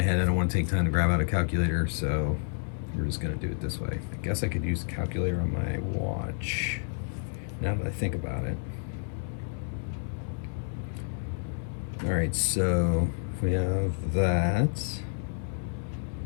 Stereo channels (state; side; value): silent; right; 58 dB below the other